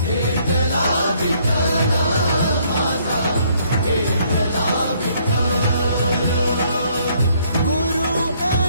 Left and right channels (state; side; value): inverted; both; correlation -0.66